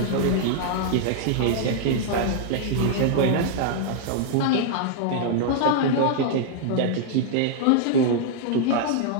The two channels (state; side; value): different; both; correlation -0.01